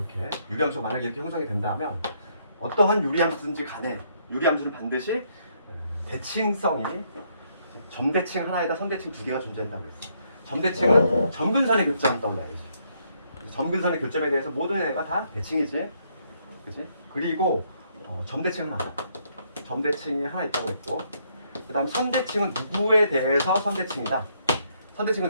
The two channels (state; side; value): inverted; both; correlation -0.72